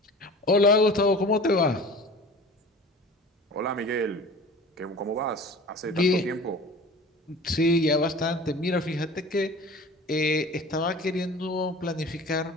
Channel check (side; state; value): both; normal; correlation 0.40